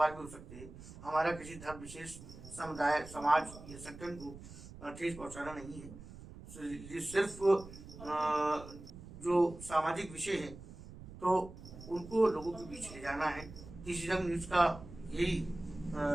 भी हो सकते हैं। हमारा किसी धर्म विशेष, समुदाय, समाज या संगठन को ठेस पहुंचाना नहीं है। ये सिर्फ जो सामाजिक विषय है तो उनको लोगों के बीच ले जाना है। किसी रंग न्यूज का यही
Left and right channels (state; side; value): noise; right; rumble, 15 dB below the sound